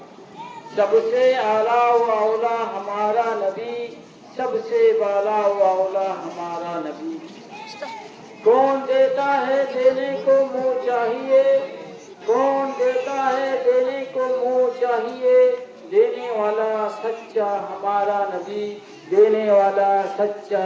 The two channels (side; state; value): both; identical; correlation 1.00